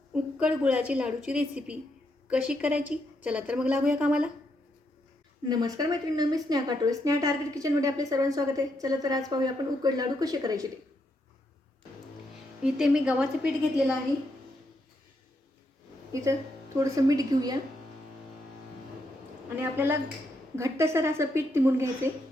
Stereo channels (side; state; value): both; normal; correlation 0.79